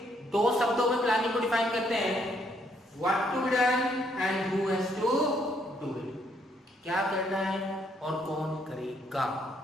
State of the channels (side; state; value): both; normal; correlation 0.71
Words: दो शब्दों में प्लानिंग को डिफाइन करते हैं, what to be done and who has to do it. क्या करना है और कौन करेगा,